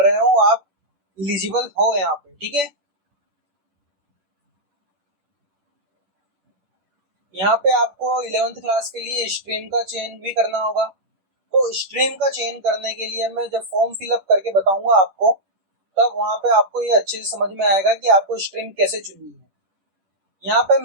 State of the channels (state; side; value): late; left; 10 ms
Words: रहे हो, आप एलिजिबल हो यहाँ पे, ठीक है। यहाँ पे आपको 11th क्लास के लिए स्ट्रीम का चयन भी करना होगा। तो स्ट्रीम का चयन करने के लिए मैं जब फॉर्म फिलअप करके बताऊंगा आपको, तब वहां पे आपको ये अच्छे से समझ में आएगा कि आपको स्ट्रीम कैसे चुननी है। यहाँ पे